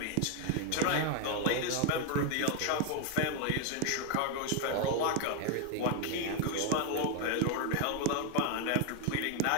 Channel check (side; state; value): both; different; correlation 0.01